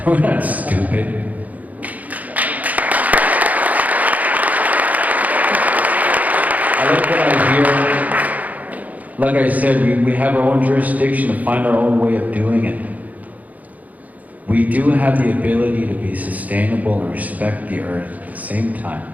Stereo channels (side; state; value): left; late; 0.077 ms